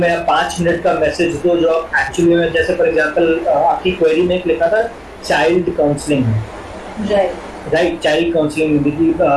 आप 5 मिनट का मैसेज दो जो आप एक्चुअली में, जैसे फॉर एग्जांपल आपकी क्वेरी में एक लिखा था चाइल्ड काउंसलिंग में, राइट, चाइल्ड काउंसलिंग कि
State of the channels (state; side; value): identical; both; correlation 1.00